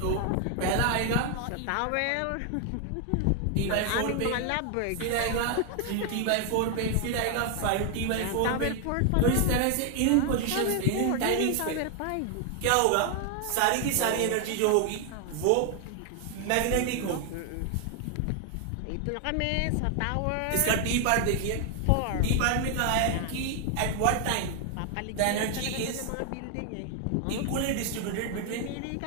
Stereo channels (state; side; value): different; both; correlation 0.00